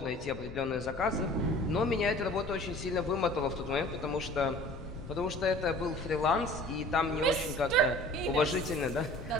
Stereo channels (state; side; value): noise; left; rumble, 12 dB below the sound